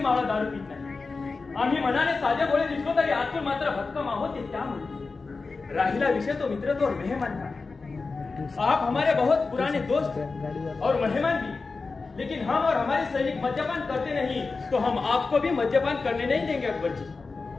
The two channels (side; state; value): right; quieter; 4.1 dB